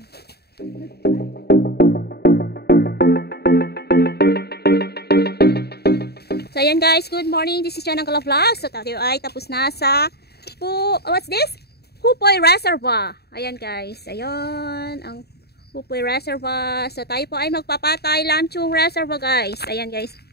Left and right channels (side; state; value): right; late; 0.47 ms